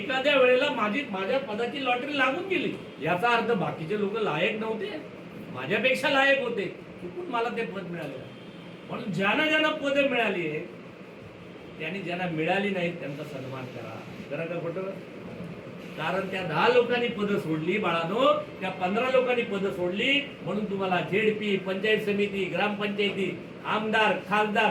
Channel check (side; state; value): both; identical; correlation 1.00